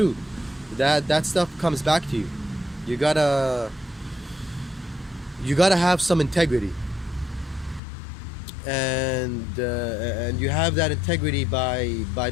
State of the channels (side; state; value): right; drops out; at 7.8 s